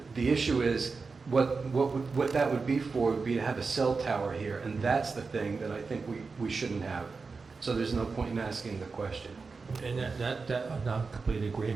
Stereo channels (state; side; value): quieter; left; 4.5 dB